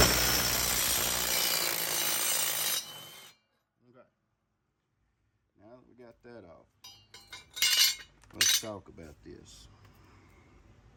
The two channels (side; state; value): both; identical; correlation 1.00